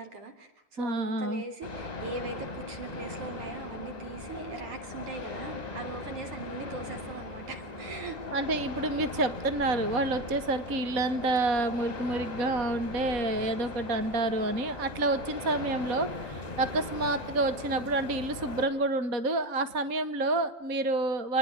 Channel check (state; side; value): late; left; 4.2 ms